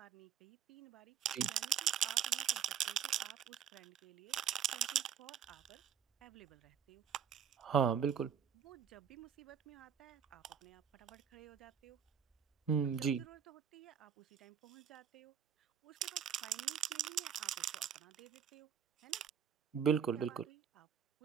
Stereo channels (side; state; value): left; quieter; 7.9 dB